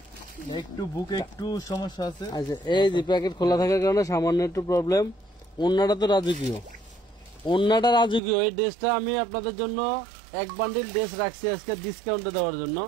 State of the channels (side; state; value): left; drops out; at 8.2 s